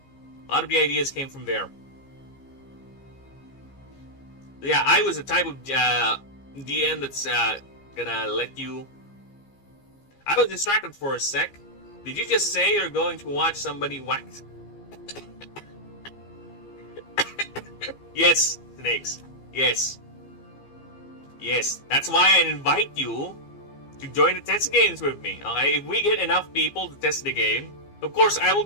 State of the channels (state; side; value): late; right; 15 ms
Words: A lot of the ideas came from there. Yeah, I was the type of DM that's gonna let you... I was distracted for a sec. Did you just say you're going to watch somebody wax? Yes, Snakes. Yes. Yes. That's why I invite you to join the test games with me. Okay? If we get enough people to test the game, of course, I will